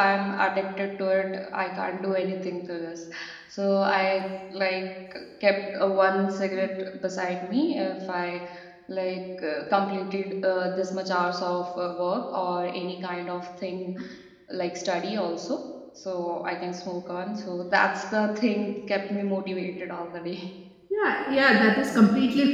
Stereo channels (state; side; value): identical; both; correlation 1.00